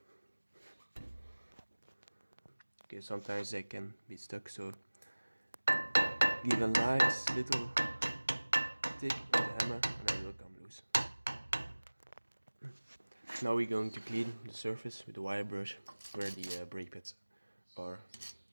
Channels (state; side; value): inverted; both; correlation -1.00